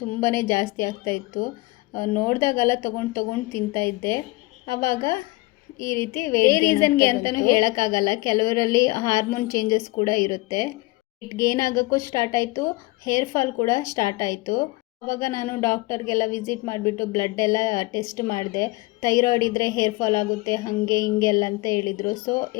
ತುಂಬಾ ಜಾಸ್ತಿ ಆಗ್ತಾಯಿತ್ತು. ನೋಡಿದಾಗೆಲ್ಲ ತೊಗೊಂಡು ತಿಂತಾಯಿದ್ದೆ. ಆವಾಗ ಈ ರೀತಿ ರೀಸನ್ಗೆ ಅಂತಲೂ ಹೇಳೋಕ್ಕಾಗಲ್ಲ. ಕೆಲವರಲ್ಲಿ ಹಾರ್ಮೋನ್ ಚೇಂಜಸ್ ಕೂಡ ಇರುತ್ತೆ. ವೆಯ್ಟ್ ಗೇನ್ ಆಗೋಕ್ಕೂ ಸ್ಟಾರ್ಟ್ ಆಯಿತು, ಹೇರ್ ಫಾಲ್ ಕೂಡ ಸ್ಟಾರ್ಟ್ ಆಯಿತು. ಆವಾಗ ನಾನು ಡಾಕ್ಟರ್ಗೆಲ್ಲ ವಿಸಿಟ್ ಮಾಡಿಬಿಟ್ಟು ಬ್ಲಡ್ ಎಲ್ಲ ಟೆಸ್ಟ್ ಮಾಡಿದೆ. ಥೈರಾಯ್ಡ್ ಇದ್ದರೆ ಹೇರ್ ಫಾಲ್ ಆಗುತ್ತೆ ಹಾಗೆ ಹಿಂಗೆಲ್ಲ ಅಂತ ಹೇಳಿದರು. ಸೊ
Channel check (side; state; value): right; quieter; 22.5 dB